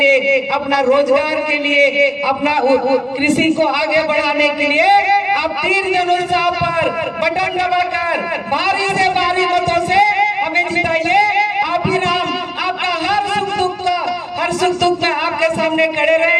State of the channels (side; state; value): both; identical; correlation 1.00